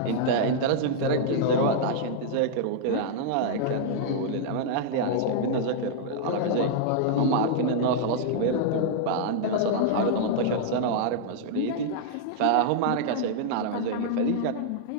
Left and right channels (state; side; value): different; both; correlation -0.01